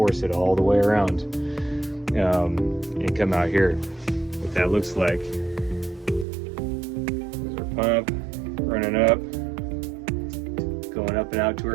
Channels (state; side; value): drops out; left; at 6.2 s